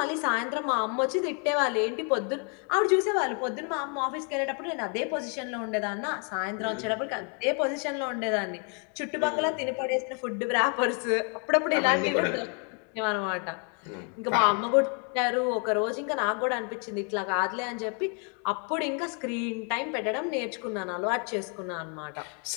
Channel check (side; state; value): right; quieter; 39.4 dB